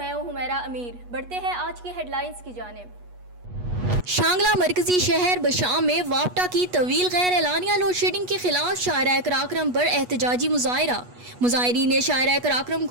हूं हुमैरा अमीर। बढ़ते हैं आज की हेडलाइंस की जानिब। शांगला मरकजी शहर बशाम में वापटा की तवील गैर एलानिया लोड शेडिंग के खिलाफ शायरा कराक्रम पर एहतजाजी मुजाहरा। मुजाहिरीन ने शायरा कराक्रम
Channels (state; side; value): late; left; 8.2 ms